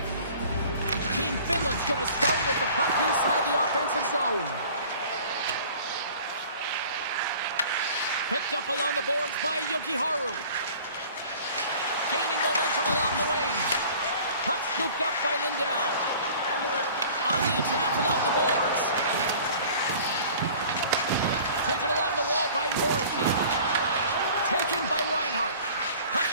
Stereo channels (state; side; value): inverted; both; correlation -0.47